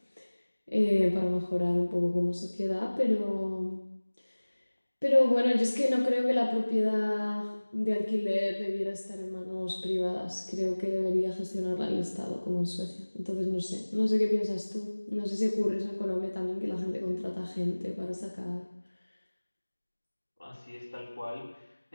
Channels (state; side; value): inverted; both; correlation -1.00